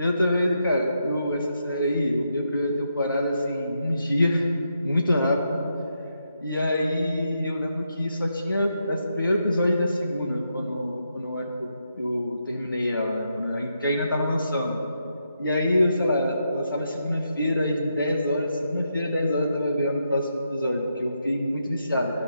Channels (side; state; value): both; inverted; correlation -0.82